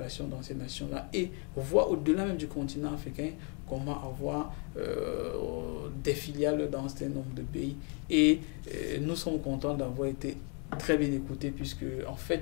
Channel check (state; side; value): quieter; right; 37.2 dB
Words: dans ces nations-là, et voir au-delà même du continent africain comment avoir des filiales dans un certain nombre de pays. Et nous sommes contents d'avoir été très bien écoutés, puisque en